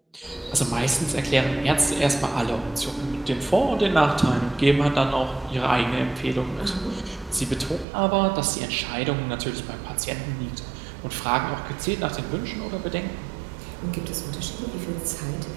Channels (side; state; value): left; drops out; at 7.9 s